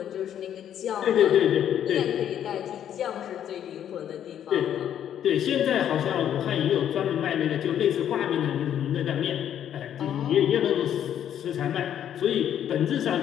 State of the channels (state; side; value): quieter; right; 10.0 dB